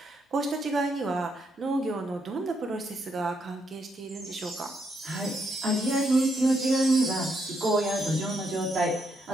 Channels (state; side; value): normal; both; correlation 0.77